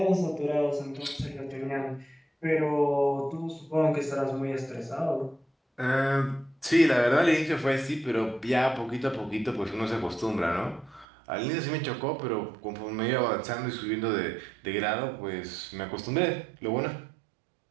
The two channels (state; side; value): drops out; left; at 11.1 s